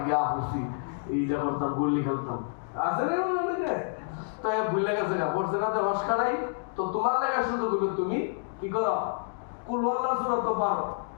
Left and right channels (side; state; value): right; silent; digital silence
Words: গিয়া পড়ছি, এইটা করতাম, গুলি খেলতাম, আছে না অনেকে তো ভুলে গেছে গা পড়ছে না তো হসকারাই। তো তোমার লেগা সুযোগ হলো তুমি কি করো, কুল আল্লাহর সূরা তো পারো,